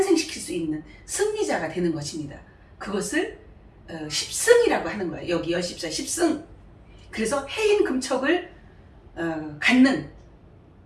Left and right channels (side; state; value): both; identical; correlation 1.00